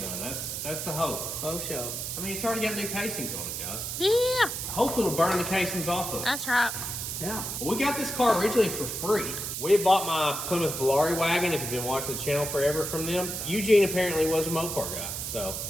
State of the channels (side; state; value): right; noise; hiss, 4 dB below the sound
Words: That's the hope. Faux show. I mean, it's already got new casings on it, guys. Yeah. Hopefully it'll burn the casings off of it. That's right. Yeah. Well, we got this car originally for free. We had bought my Plymouth Valari wagon, if you've been watching the channel forever from them. Eugene apparently was a Mopar guy. So